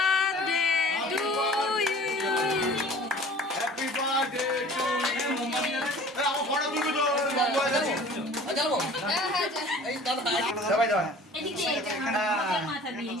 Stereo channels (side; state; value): both; normal; correlation 0.46